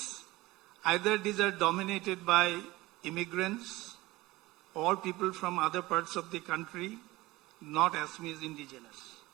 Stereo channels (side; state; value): left; quieter; 19.5 dB